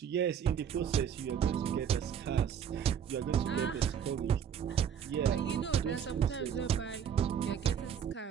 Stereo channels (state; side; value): quieter; left; 8.3 dB